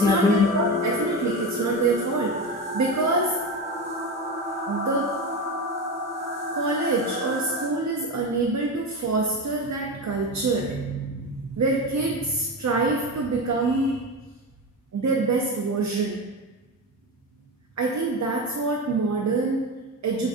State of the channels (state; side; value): normal; both; correlation 0.20